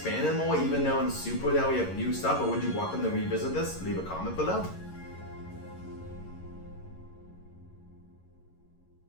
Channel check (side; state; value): right; late; 11 ms